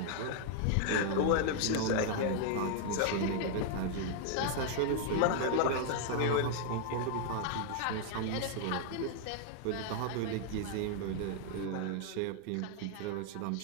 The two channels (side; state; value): both; different; correlation 0.00